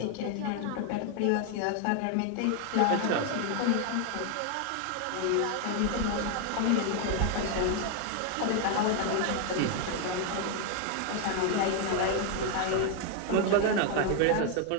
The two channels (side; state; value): both; different; correlation 0.01